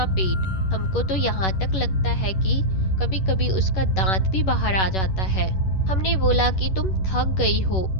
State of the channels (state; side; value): late; right; 11 ms